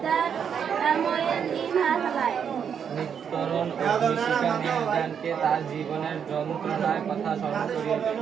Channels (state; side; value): quieter; left; 7.6 dB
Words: the turmoil in her life. নিত্যরণ অগ্নিশিখা মেহেরজানকে তার জীবনের যন্ত্রণার কথা স্মরণ করিয়ে দেয়।